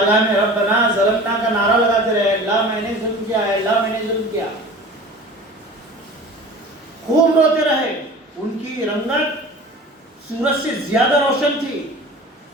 میں ربنا ظلمنا کا نعرہ لگاتے رہے، اللہ میں نے ظلم کیا ہے، اللہ میں نے ظلم کیا، خوب روتے رہے۔ ان کی رنگت سورج سے زیادہ روشن تھی،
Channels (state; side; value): normal; both; correlation 0.40